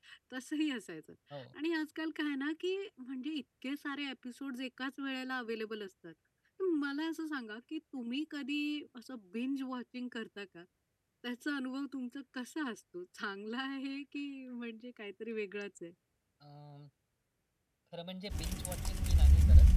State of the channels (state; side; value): identical; both; correlation 1.00